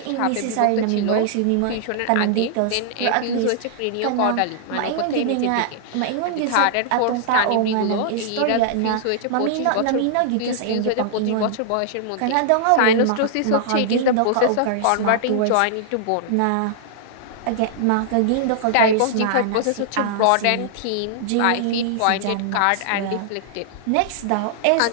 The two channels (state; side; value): different; both; correlation -0.01